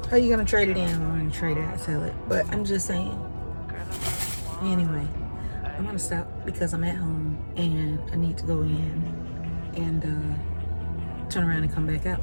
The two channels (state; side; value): inverted; both; correlation -1.00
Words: How you gonna trade it in? I'm gonna trade it and sell it. But I'm just saying. Anyway, I'm gonna stop because I'm at home and I need to go in and turn around and come back